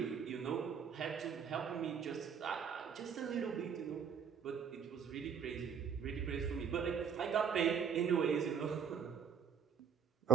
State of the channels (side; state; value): left; quieter; 7.4 dB